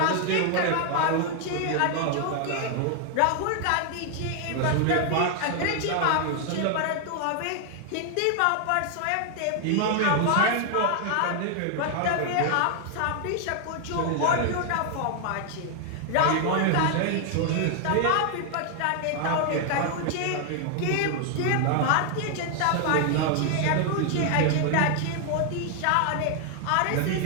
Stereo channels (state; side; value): different; both; correlation 0.00